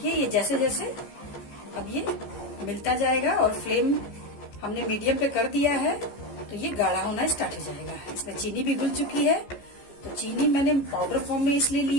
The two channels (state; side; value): late; right; 14 ms